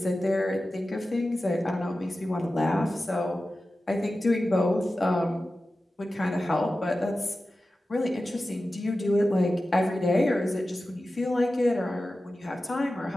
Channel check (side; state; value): both; normal; correlation 0.94